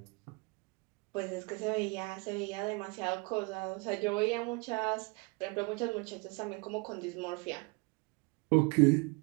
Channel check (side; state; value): left; quieter; 29.2 dB